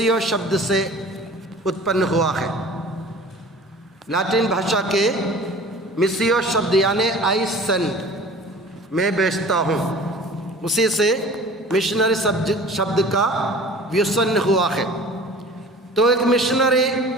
शब्द से उत्पन्न हुआ है। लातीन भाषा के मिसियो शब्द यानी आई सेंड, मैं भेजता हूँ, उसी से मिशनरी शब्द का व्युत्पन्न हुआ है। तो एक मिशनरी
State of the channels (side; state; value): both; normal; correlation 0.43